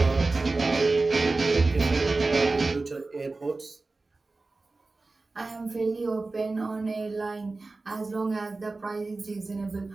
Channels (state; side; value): quieter; left; 3.5 dB